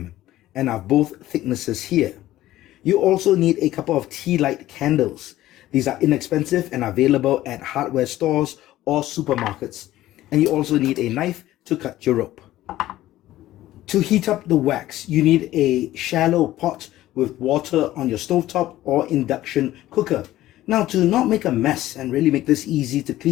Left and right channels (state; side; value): quieter; right; 15.0 dB